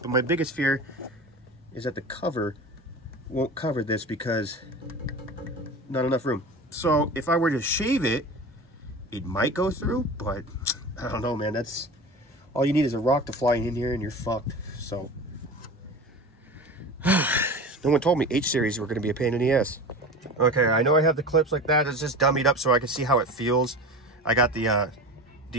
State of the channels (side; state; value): both; normal; correlation 0.32